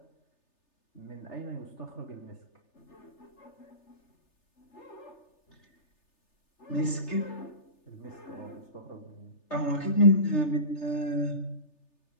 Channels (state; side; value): late; right; 3.3 ms